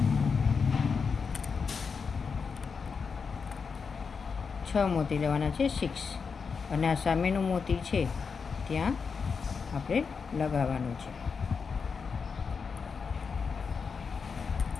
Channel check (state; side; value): quieter; right; 5.5 dB